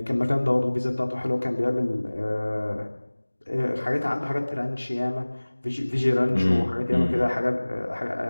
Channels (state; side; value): inverted; both; correlation -1.00